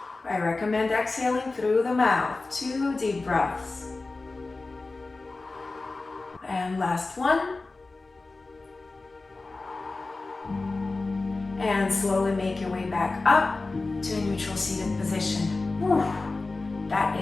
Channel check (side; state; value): right; quieter; 3.5 dB